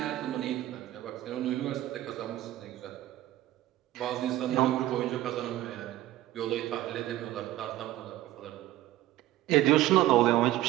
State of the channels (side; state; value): left; quieter; 15.0 dB